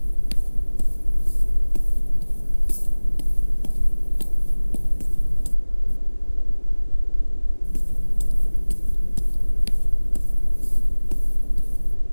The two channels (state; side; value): inverted; both; correlation -1.00